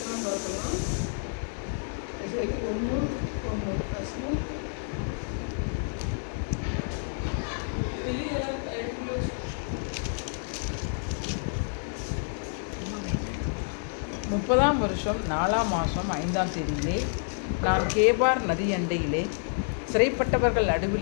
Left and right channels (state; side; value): silent; right; digital silence